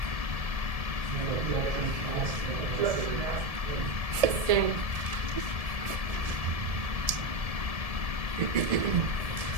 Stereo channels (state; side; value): late; left; 1.7 ms